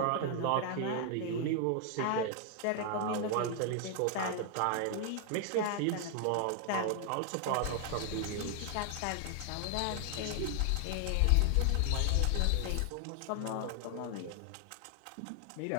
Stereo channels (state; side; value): different; both; correlation 0.00